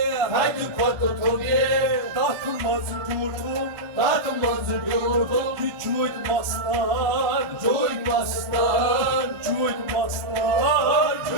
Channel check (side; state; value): both; normal; correlation -0.09